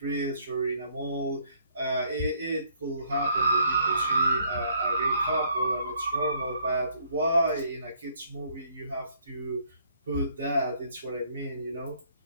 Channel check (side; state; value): both; inverted; correlation -0.65